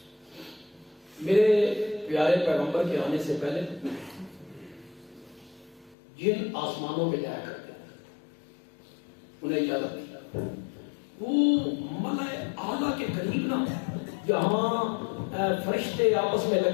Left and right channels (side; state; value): right; drops out; at 6.0 s